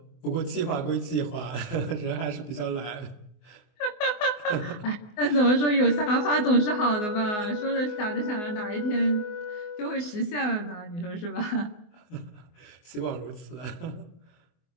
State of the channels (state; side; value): late; right; 24 ms